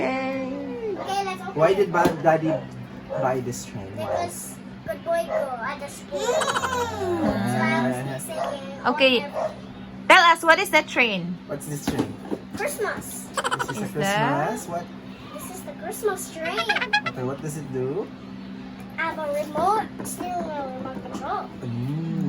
Okay, let's open Why it. did Daddy buy this train? Why? Because good boy go at the school. So I was singing. Okay. Tell us, what is that train? What's this train? Christmas. This is a Is that- Christmas. What? This is the Christmas train. Okay, what does it do? I have a remote steering wheel, remote control.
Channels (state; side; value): identical; both; correlation 1.00